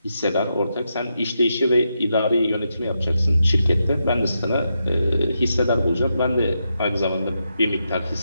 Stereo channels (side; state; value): both; inverted; correlation -0.84